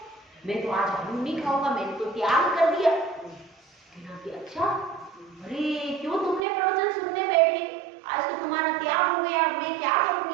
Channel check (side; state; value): left; drops out; at 6.4 s